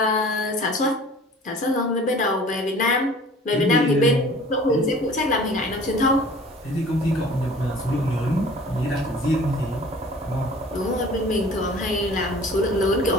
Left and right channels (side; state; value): both; normal; correlation 0.47